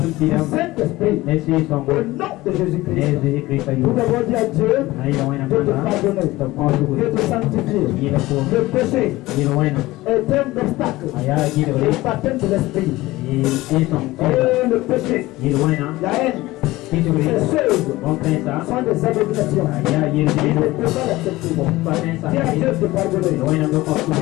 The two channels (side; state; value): right; quieter; 18.6 dB